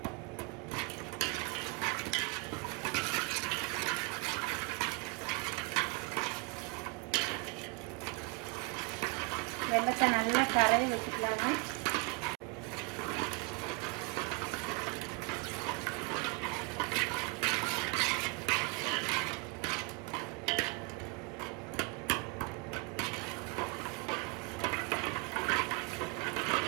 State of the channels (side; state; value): left; quieter; 27.5 dB